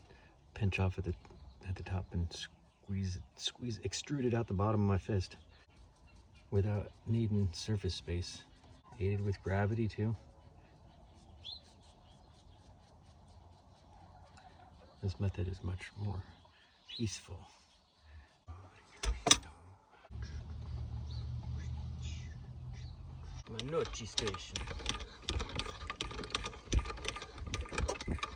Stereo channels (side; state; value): both; identical; correlation 1.00